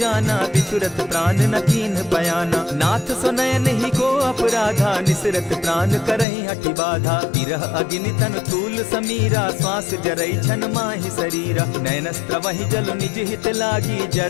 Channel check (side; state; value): right; drops out; at 6.2 s